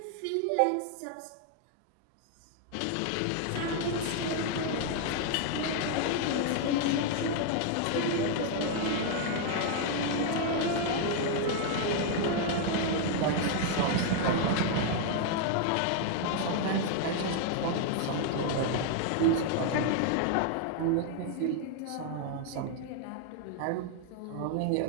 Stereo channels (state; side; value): different; both; correlation 0.00